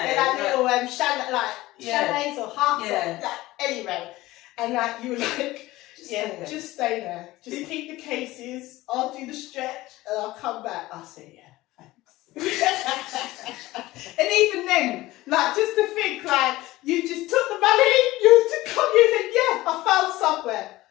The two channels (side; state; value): right; quieter; 18.0 dB